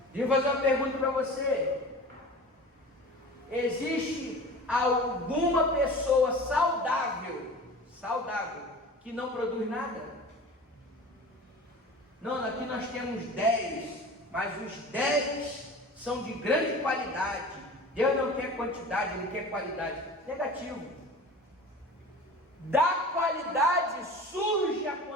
Deixa eu fazer uma pergunta para você. Existe alguma pessoa saudável, que não produz nada? Não, aqui nós temos 10, mas os 10 são de grande qualidade. Deus não quer quantidade, Ele quer qualidade. Negativo. Da qualidade surge a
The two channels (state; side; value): normal; both; correlation 0.37